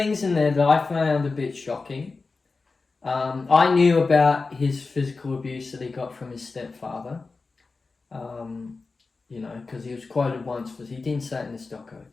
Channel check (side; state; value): right; quieter; 4.0 dB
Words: in there that I found a bit shocking. I knew about his physical abuse that he got from his stepfather. Because he was quoted once he didn't say it in this doco,